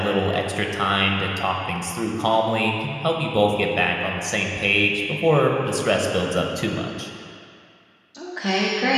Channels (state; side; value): identical; both; correlation 1.00